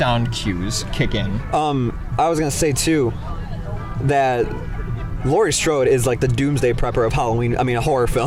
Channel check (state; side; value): identical; both; correlation 1.00